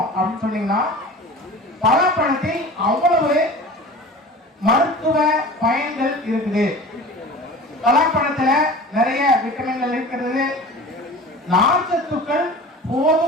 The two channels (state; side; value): normal; both; correlation 0.37